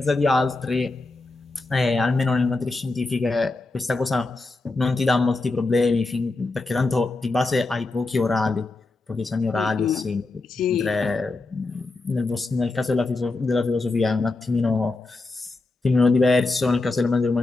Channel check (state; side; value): quieter; right; 3.3 dB